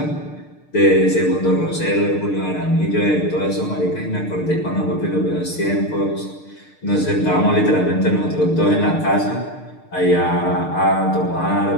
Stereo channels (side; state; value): right; late; 6.6 ms